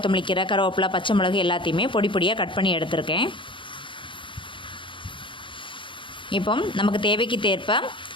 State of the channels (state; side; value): late; right; 0.24 ms